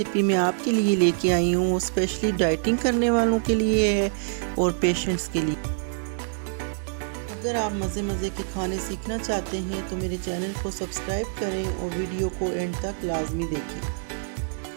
मैं आपके लिए लेके आई हूँ वो स्पेशली डाइटिंग करने वालों के लिए है और पेशेंट्स के लिए। अगर आप मज़े मज़े के खाने सीखना चाहते हैं तो मेरे चैनल को सब्सक्राइब करें और वीडियो को एंड तक लाजमी देखें।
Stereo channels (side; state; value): left; silent; digital silence